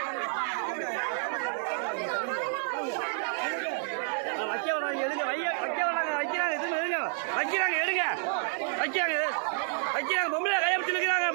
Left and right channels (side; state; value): left; silent; 58 dB below the other